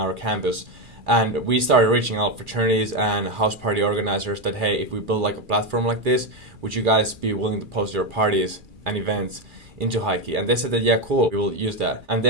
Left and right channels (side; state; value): left; late; 2.4 ms